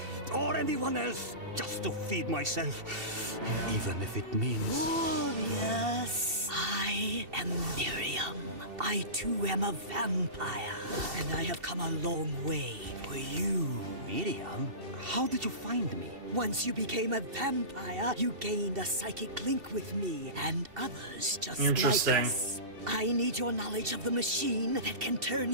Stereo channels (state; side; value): late; left; 2.7 ms